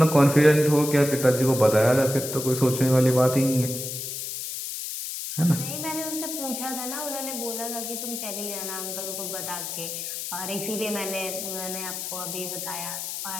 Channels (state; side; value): noise; left; hiss, 6 dB below the sound